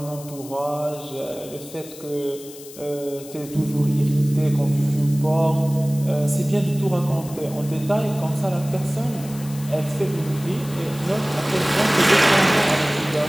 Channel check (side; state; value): left; noise; hiss, 17 dB below the sound